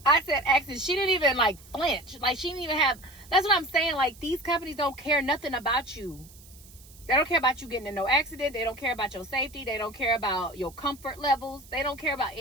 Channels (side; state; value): right; noise; hiss, 22 dB below the sound